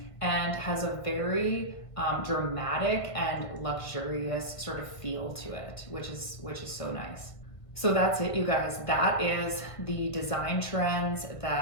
and has a very dramatic and luxurious sort of feel to it, which is so nice. So that's it, you guys. That is the design trends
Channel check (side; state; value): right; late; 1.6 ms